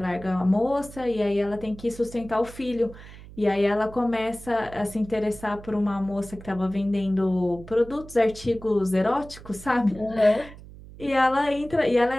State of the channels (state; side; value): noise; right; hum, 17 dB below the sound